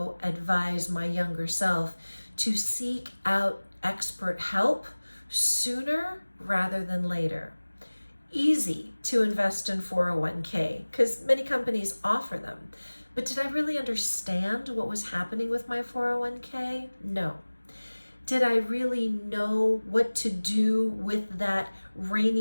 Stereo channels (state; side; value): inverted; both; correlation -1.00